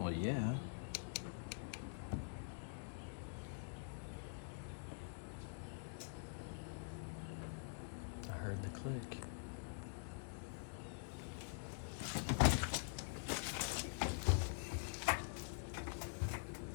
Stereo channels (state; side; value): silent; right; digital silence